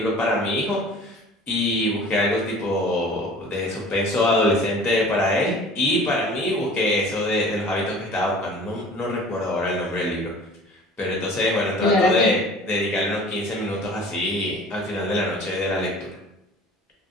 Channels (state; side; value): normal; both; correlation 0.45